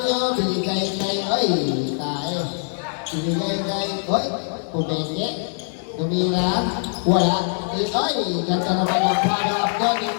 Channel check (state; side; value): silent; right; 64 dB below the other